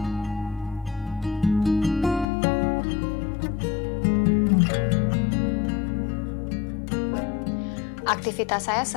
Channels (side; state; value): right; drops out; at 2.2 s